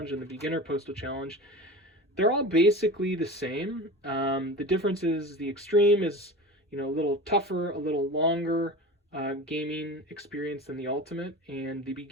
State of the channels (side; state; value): both; normal; correlation 0.32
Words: and the Beginner Postal Challenge. They're all basically the same. The difference is the Extreme is, a little tougher, a little longer gaming experience than the Ultimate, and the